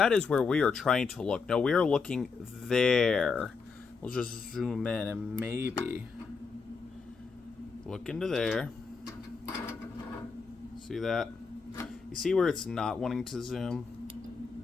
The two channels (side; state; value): right; quieter; 5.0 dB